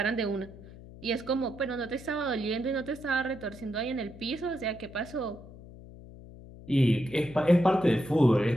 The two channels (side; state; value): left; noise; hum, 17 dB below the sound